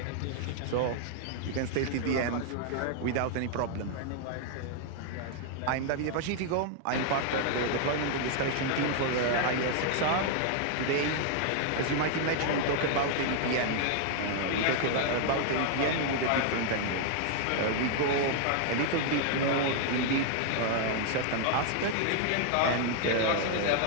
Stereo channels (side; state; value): both; different; correlation 0.00